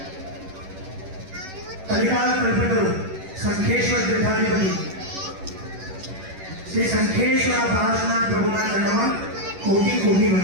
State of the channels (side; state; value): left; late; 11 ms